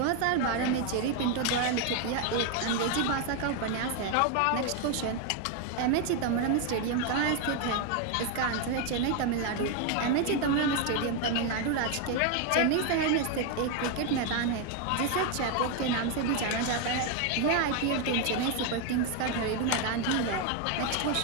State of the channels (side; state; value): both; different; correlation 0.01